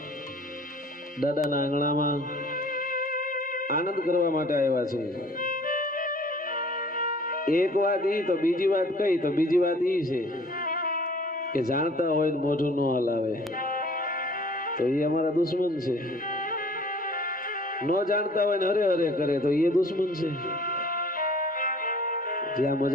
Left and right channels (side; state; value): both; normal; correlation 0.52